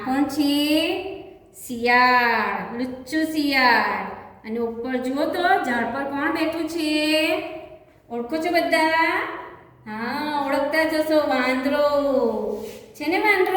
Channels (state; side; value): identical; both; correlation 1.00